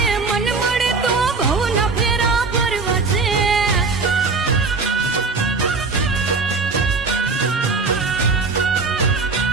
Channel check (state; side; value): quieter; left; 4.2 dB